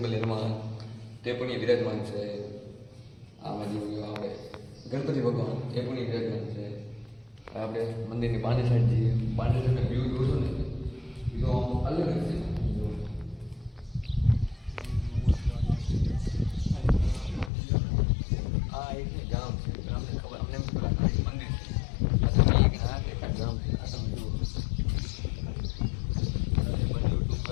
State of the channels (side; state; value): right; drops out; at 17.5 s